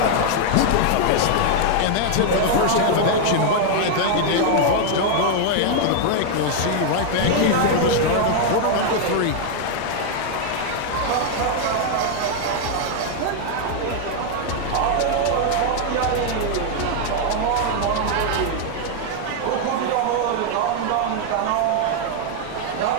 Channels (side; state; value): both; different; correlation 0.00